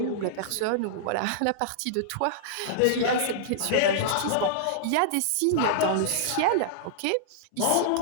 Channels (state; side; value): different; both; correlation -0.02